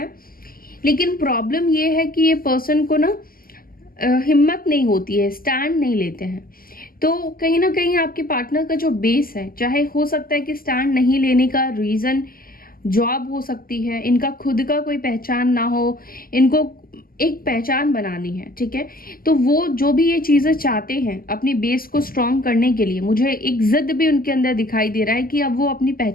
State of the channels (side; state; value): right; late; 0.42 ms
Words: लेकिन प्रॉब्लम ये है कि ये पर्सन को ना हिम्मत नहीं होती है, स्टैंड नहीं लेते हैं। तो कहीं ना कहीं आपके पार्टनर का जो बेस है, चाहे हो सकता है कि स्टैंड नहीं लेने का रीजन जॉब हो सकती है, इनका खुद का कोई पहचान ना हो, इनको एक पहचान बनानी है, ठीक है। तो वो जो भी ये चीजें चाहते हैं अपनी बेस को स्ट्रांग करने के लिए, मुझे एक जिद भी उनके अंदर दिखाई दे रहा है कि अब वो अपनी